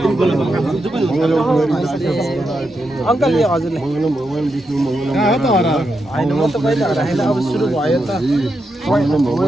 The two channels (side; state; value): both; normal; correlation 0.85